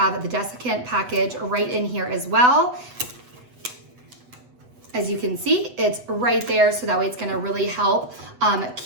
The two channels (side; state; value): left; late; 8.0 ms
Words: the Desiccant package right in here as well. As you can see, it's right there, so that way it's gonna really help